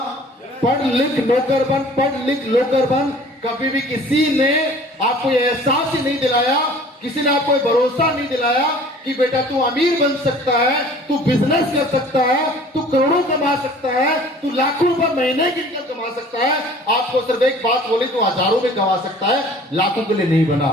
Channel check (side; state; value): both; normal; correlation 0.49